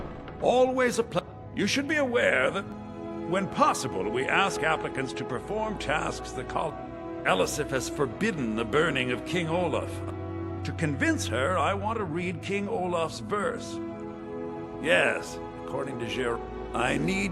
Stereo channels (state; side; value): identical; both; correlation 1.00